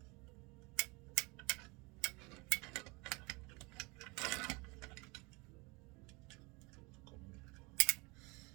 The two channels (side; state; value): left; quieter; 27.0 dB